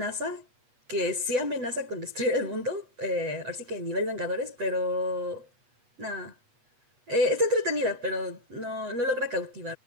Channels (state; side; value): late; left; 8.3 ms